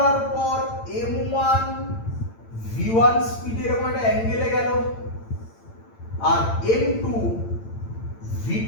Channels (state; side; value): late; right; 8.9 ms